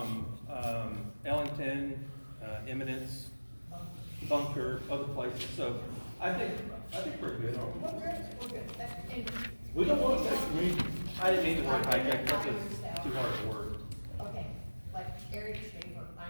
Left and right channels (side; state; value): both; inverted; correlation -1.00